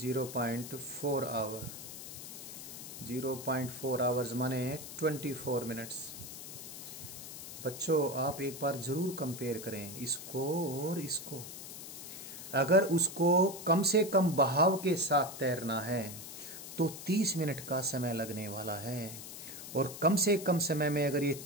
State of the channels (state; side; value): noise; left; hiss, 11 dB below the sound